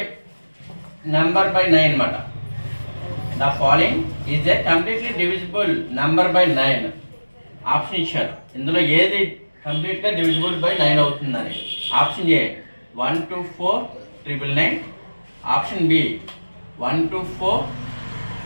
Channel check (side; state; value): both; inverted; correlation -1.00